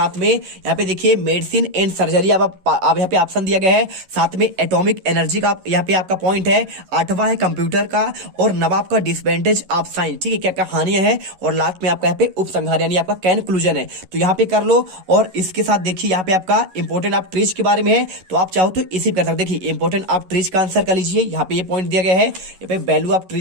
में यहाँ पे देखिए मेडिसिन एंड सर्जरी अब यहाँ पे ऑप्शन दिया गया है, साथ में एटॉमिक एनर्जी का यहाँ पे आपका पॉइंट है, 8वां है कंप्यूटर का और नवाब का डिसएडवांटेज ऑफ साइंस, ठीक है, क्या क्या हानियां है, और लास्ट में आपका यहाँ पे उपसंहार यानी आपका कंक्लूजन है। तो यहाँ पे कर लो। और इसके साथ देखिए यहाँ पे आपका इंपॉर्टेंट ऑफ ट्रीज के बारे में है, तो आप चाहो तो इसी कर सकते। देखिए इंपॉर्टेंट ऑफ ट्रीज का आंसर कर लीजिए, यहाँ पे ये पॉइंट दिया गया है। यहाँ पे वैल्यू ऑफ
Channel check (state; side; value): late; left; 11 ms